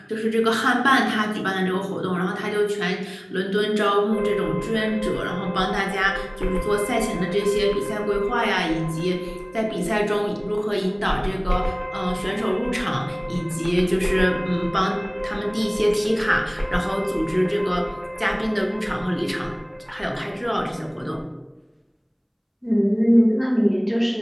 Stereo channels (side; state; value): both; identical; correlation 1.00